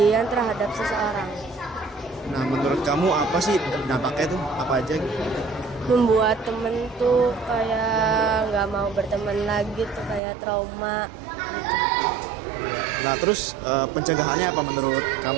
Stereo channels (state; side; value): drops out; left; at 10.2 s